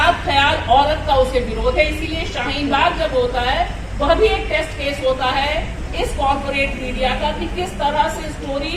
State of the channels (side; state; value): both; identical; correlation 1.00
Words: ख्याल औरत का उसे विरोध है। इसीलिए शाहीन बाग जब होता है वह भी एक टेस्ट केस होता है इस कॉर्पोरेट मीडिया का कि किस तरह से